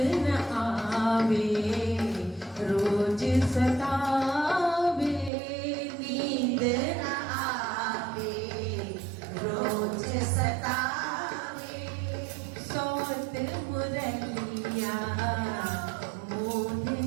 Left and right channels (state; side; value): drops out; left; at 5.3 s